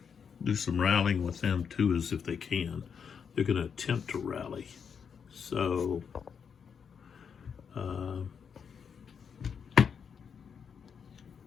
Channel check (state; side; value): quieter; right; 6.8 dB